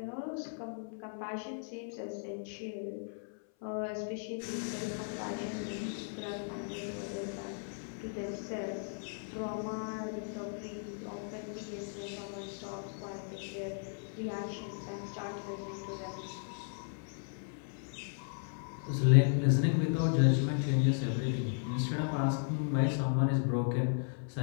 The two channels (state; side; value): silent; right; 54 dB below the other